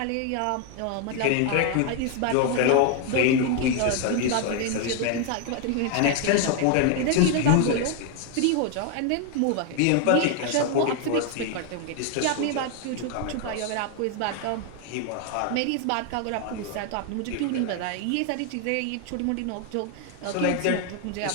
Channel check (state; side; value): different; both; correlation 0.01